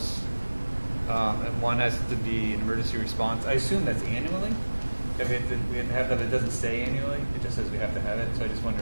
and one has to be an emergency response. I assume that's annually. If we have to have that. It doesn't say annually. It just says we have to have it. So I just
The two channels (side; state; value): both; inverted; correlation -1.00